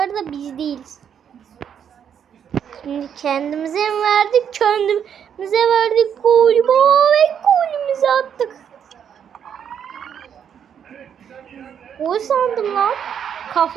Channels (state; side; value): quieter; left; 8.3 dB